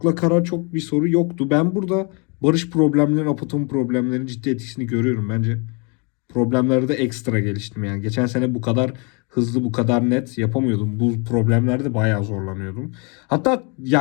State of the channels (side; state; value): right; quieter; 33.6 dB